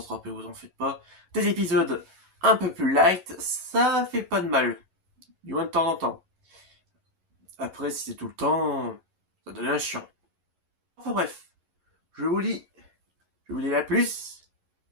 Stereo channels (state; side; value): late; left; 11 ms